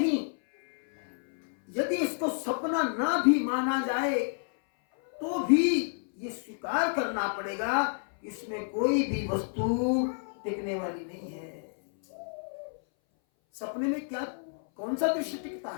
यदि इसको सपना ना भी माना जाए तो भी ये स्वीकार करना पड़ेगा, इसमें कोई भी वस्तु टिकने वाली नहीं है। सपने में क्या, कौन सा दृश्य टिकता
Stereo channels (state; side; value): silent; right; 58 dB below the other